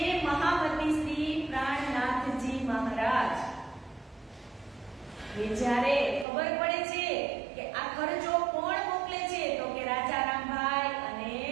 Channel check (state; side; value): drops out; left; at 6.2 s